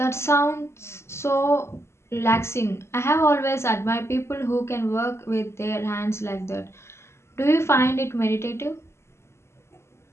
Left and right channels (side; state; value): right; late; 0.13 ms